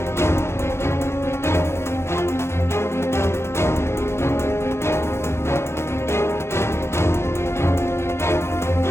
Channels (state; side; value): late; right; 0.12 ms